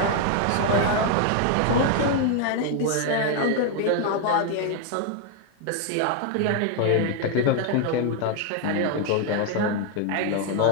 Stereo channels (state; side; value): different; both; correlation 0.00